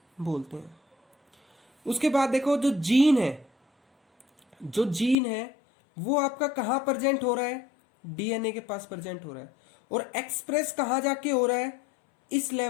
बोलते हैं. उसके बाद देखो जो जीन है वो आपका कहां प्रेजेंट हो रहा है, डीएनए के पास प्रेजेंट हो रहा है. और एक्सप्रेस कहां जाके हो रहा है, इस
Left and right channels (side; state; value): right; drops out; at 5.2 s